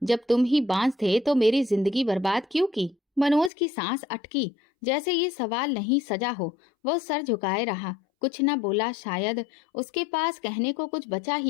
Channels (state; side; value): drops out; right; at 3.5 s